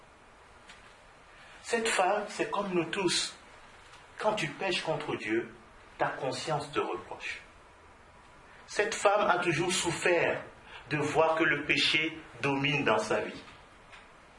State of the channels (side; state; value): both; identical; correlation 1.00